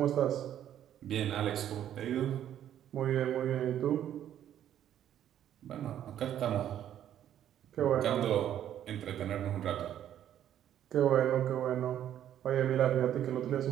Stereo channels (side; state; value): left; quieter; 10.9 dB